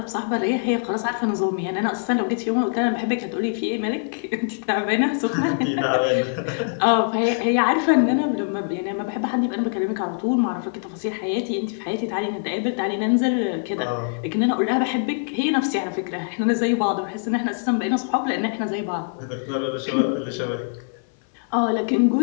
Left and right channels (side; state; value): right; silent; 60 dB below the other